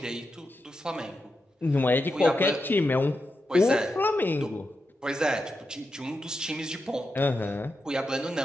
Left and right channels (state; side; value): normal; both; correlation 0.87